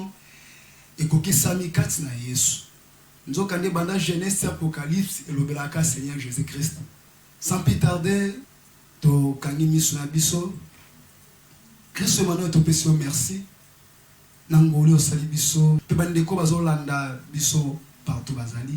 ekokisami kati na Yesu. Nzokande banda Genèse Apocalypse elobela ka Seigneur Jésus-Christ. Sans plus tarder to kangi miso na biso Christ Emmanuel to pesio merci nangoli osali biso pe bandeko bazolanda biso partout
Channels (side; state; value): both; identical; correlation 1.00